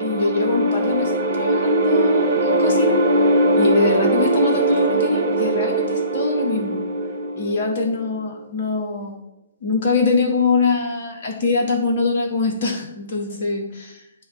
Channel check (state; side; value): inverted; both; correlation -0.51